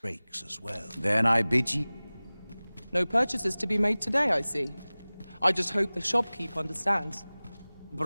breaks as well. Then I bid ye. No purchases to be made today, I see. I just hope the shopkeep understands.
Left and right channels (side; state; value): both; inverted; correlation -0.99